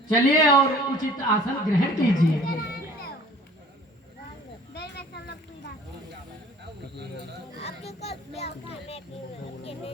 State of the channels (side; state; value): both; normal; correlation 0.50